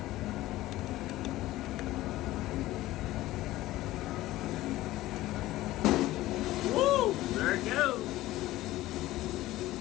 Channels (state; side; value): quieter; right; 16.5 dB